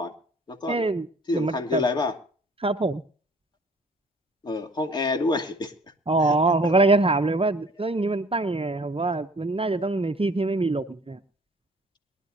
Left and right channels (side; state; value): both; normal; correlation 0.52